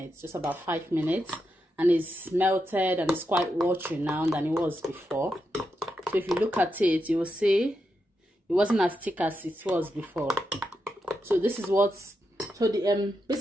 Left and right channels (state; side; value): normal; both; correlation 0.85